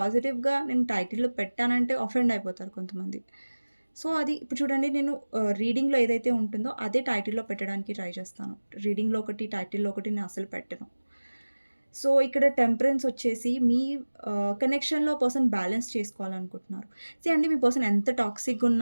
నేను టైటిల్‌లో పెట్టానంటే అఫెండ్ అయిపోతారు కొంతమంది. సో, అది ఇప్పుడు చూడండి, నేను రీడింగ్‌లో ఏదైతే ఉంటుందో అదే టైటిల్‌లో పెట్టడానికి ట్రై చేస్తాను. రీడింగ్‌లో ఒకటి, టైటిల్‌లో ఒకటి నేను అసలు పెట్టను. సో, ఇక్కడ టెంపరెన్స్ వచ్చేసి మీ కనెక్షన్‌లో పర్సన్ బ్యాలెన్స్ చేసుకోవాలనుకుంటున్నారు. అండి, మీ పర్సన్ ఎంత టాక్సిక్‌గా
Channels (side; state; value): both; inverted; correlation -1.00